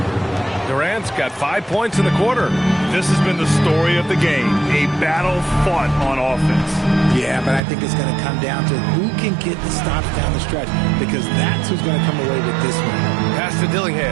Durant's got 5 points in the quarter. This has been the story of the game. A battle fought on offense. Yeah, but I think it's going to come down to who can get the stops down the stretch, because that's who's going to come away with this one. Pass to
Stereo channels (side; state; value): left; drops out; at 7.6 s